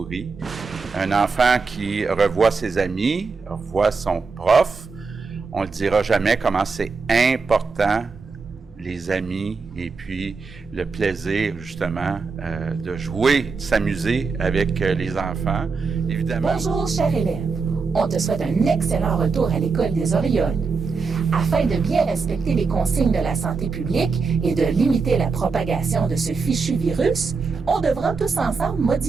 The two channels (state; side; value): quieter; left; 4.7 dB